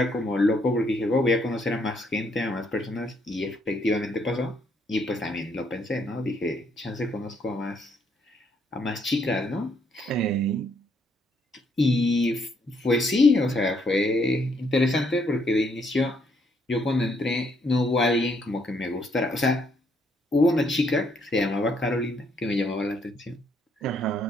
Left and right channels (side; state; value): both; normal; correlation 0.71